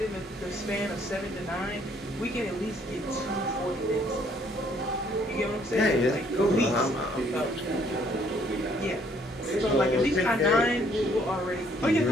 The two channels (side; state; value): both; normal; correlation 0.64